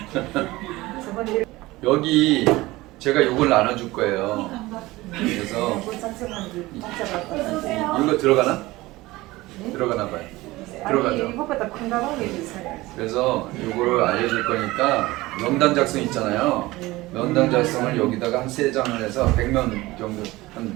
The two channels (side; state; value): left; quieter; 19.4 dB